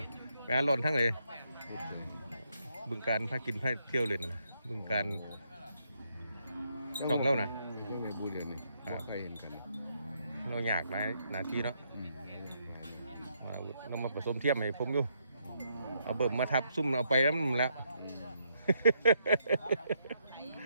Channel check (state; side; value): inverted; both; correlation -0.76